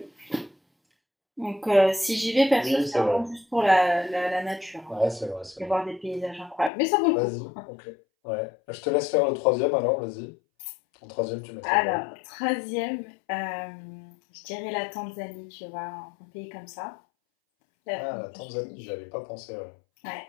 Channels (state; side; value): drops out; right; at 6.7 s